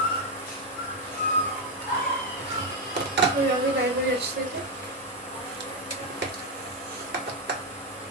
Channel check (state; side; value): normal; both; correlation 0.05